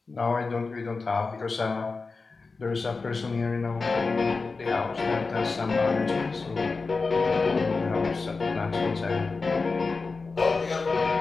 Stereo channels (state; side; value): quieter; right; 4.1 dB